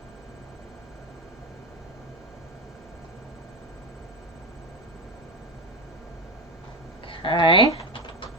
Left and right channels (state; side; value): normal; both; correlation 0.20